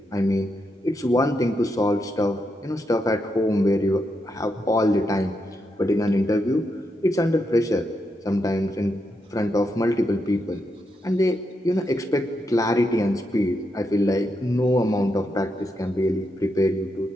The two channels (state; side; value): normal; both; correlation 0.83